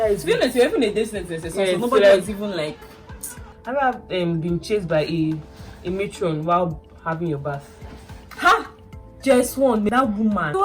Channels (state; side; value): identical; both; correlation 1.00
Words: is. To be honest, you're even a distance. Yeah, so nobody so was even like. I have been chased by a matron while having your bath. Ha! Just one, that woman. It